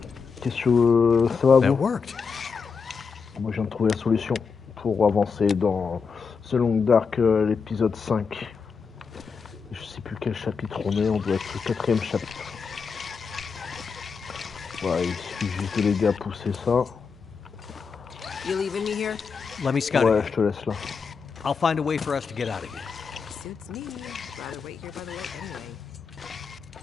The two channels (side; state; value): right; quieter; 5.5 dB